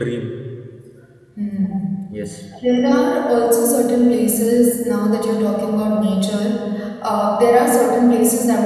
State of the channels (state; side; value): identical; both; correlation 1.00